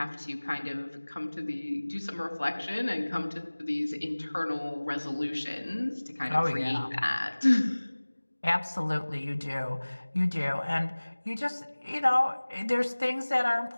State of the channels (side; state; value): both; inverted; correlation -1.00